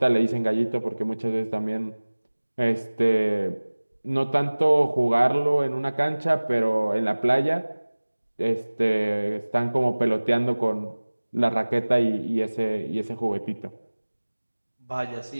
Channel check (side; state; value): both; inverted; correlation -1.00